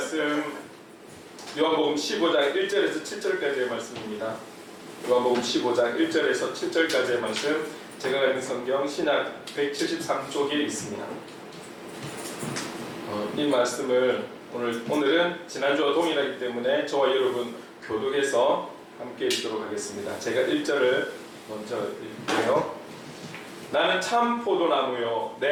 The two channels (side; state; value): both; identical; correlation 1.00